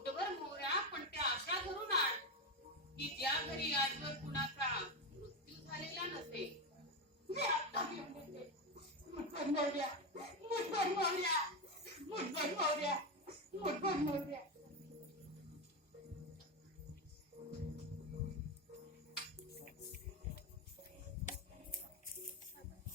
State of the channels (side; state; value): both; normal; correlation 0.13